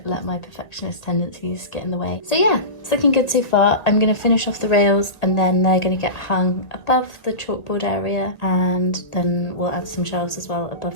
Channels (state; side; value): late; right; 1.9 ms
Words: let my perfectionist tendencies get in the way. So yeah, it's looking good so far. I'm going to finish off the rails and then they're going to get hung above the chalkboard area, and then we'll add some shelves as well